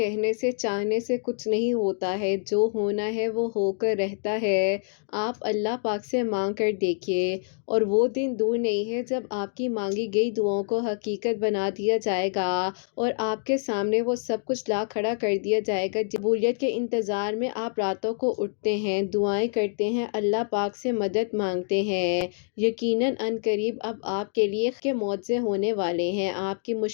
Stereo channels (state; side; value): silent; right; 59 dB below the other